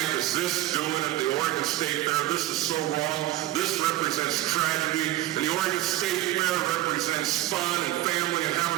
is this doing at the Oregon State Fair? This is so wrong. This represents tragedy. And the Oregon State Fair represents fun and family and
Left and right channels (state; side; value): quieter; left; 15.7 dB